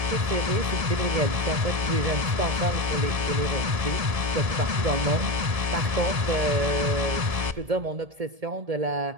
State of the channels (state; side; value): late; left; 1.7 ms